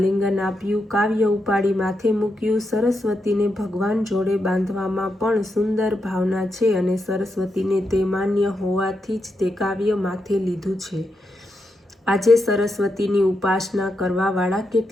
આપ્યું, કાવ્ય ઉપાડી માથે મૂક્યું. સરસ્વતીને ભગવાન જોડે બાંધવામાં પણ સુંદર ભાવના છે અને સરસ્વતીને તે માન્ય હોવાથી જ તે કાવ્ય માથે લીધું છે. આજે સરસ્વતીની ઉપાસના કરવાવાળા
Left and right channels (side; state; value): both; normal; correlation 0.85